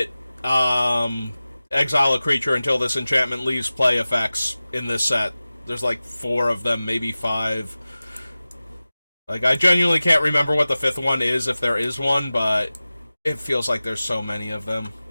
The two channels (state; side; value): inverted; both; correlation -0.97